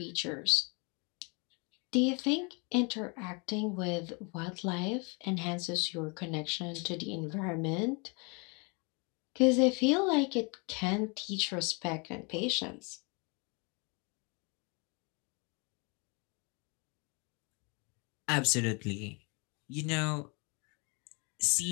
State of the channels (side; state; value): right; quieter; 31.9 dB